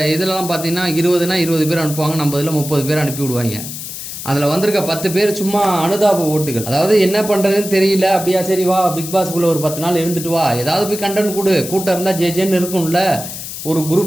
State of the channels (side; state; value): left; noise; hiss, 9 dB below the sound